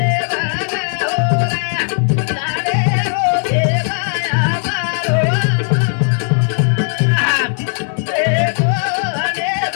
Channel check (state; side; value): silent; right; 66 dB below the other